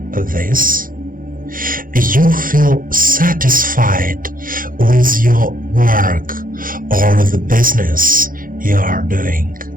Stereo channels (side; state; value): left; late; 0.40 ms